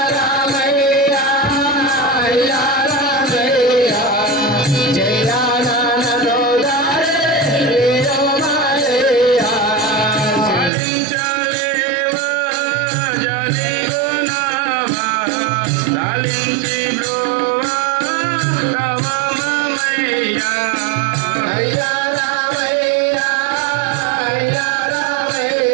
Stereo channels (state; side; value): drops out; left; at 10.7 s